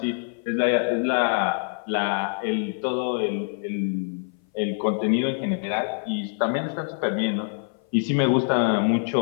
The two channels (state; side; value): silent; right; 58 dB below the other